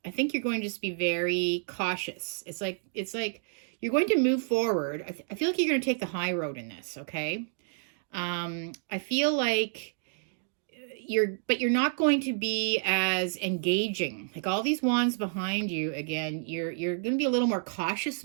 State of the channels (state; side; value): silent; left; digital silence